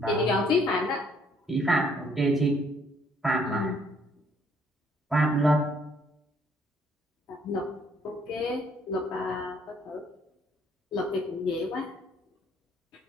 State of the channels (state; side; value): normal; both; correlation 0.65